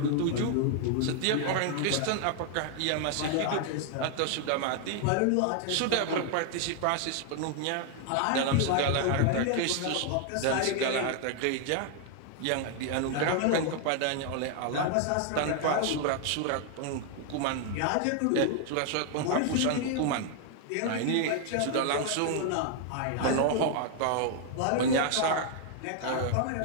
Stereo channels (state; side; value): different; both; correlation 0.00